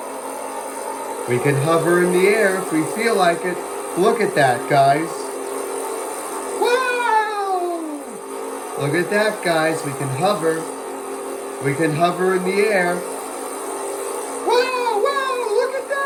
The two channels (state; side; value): identical; both; correlation 1.00